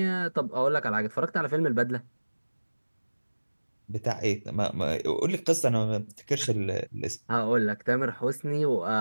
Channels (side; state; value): both; inverted; correlation -1.00